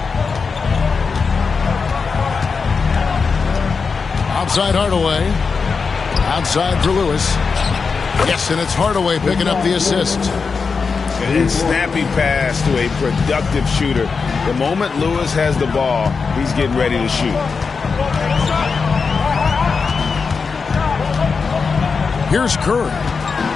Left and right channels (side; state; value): right; quieter; 5.1 dB